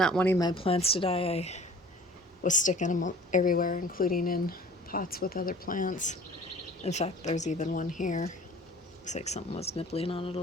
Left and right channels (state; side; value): normal; both; correlation 0.47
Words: wanting my plants to die, I was sticking them everywhere, including in pots with other plants. In fact, there's even one here. Looks like something was nibbling on it a